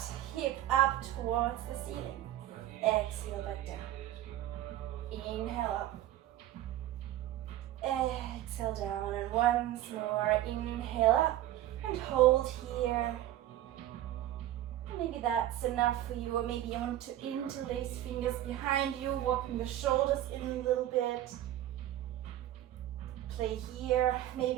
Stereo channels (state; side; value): quieter; left; 13.6 dB